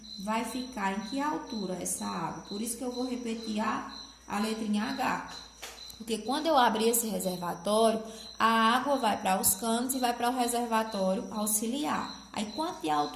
Vai ficar em que altura essa água? Por isso que eu vou repetir a letrinha H. Porque quando eu abrir esse reservatório, a água vai para os canos e vai para o reservatório auxiliar. Aí, quanto de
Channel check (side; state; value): both; identical; correlation 1.00